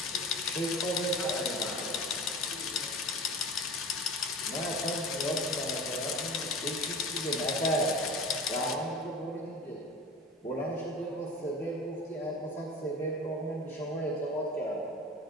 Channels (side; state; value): both; normal; correlation 0.34